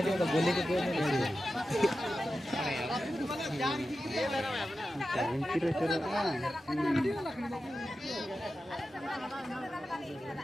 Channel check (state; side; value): normal; both; correlation 0.92